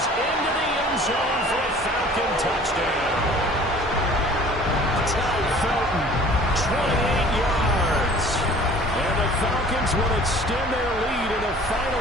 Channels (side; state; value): both; normal; correlation 0.49